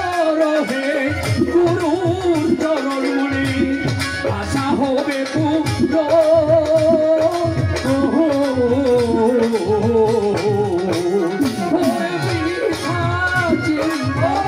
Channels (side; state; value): both; identical; correlation 1.00